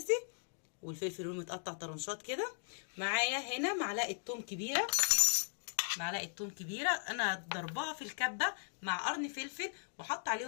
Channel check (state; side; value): silent; right; digital silence